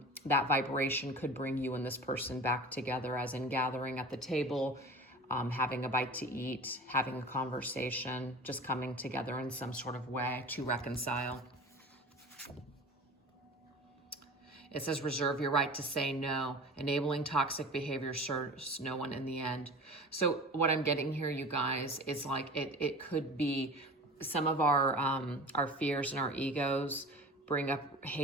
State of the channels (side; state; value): both; normal; correlation 0.37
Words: that vibration could bring you and this person back together, as in gathering at the table, having a bite to eat, having a conversation, just coming together in some sort of way to reconcile. It says, reserve your right to say no. Enabling toxic behavior serves no one in the end. So what I'm getting here, you guys, is like it could be some of our fears and our egos bring up